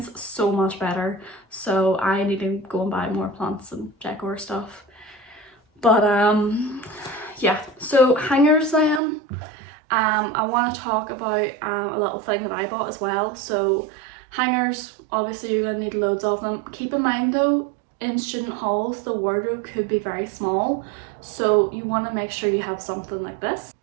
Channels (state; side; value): drops out; left; at 9.0 s